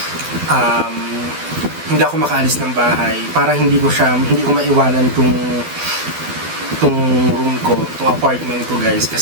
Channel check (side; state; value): left; late; 12 ms